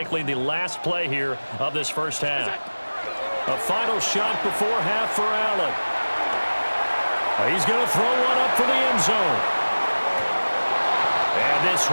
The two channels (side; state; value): both; inverted; correlation -1.00